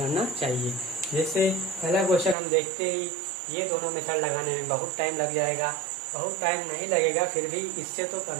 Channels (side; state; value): left; drops out; at 2.4 s